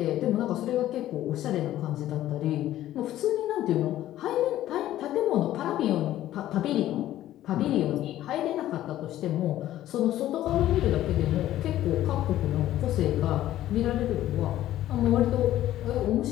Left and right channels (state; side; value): quieter; right; 13.5 dB